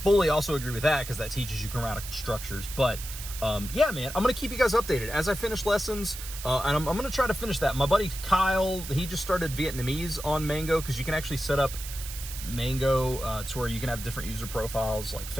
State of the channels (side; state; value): right; noise; hiss, 10 dB below the sound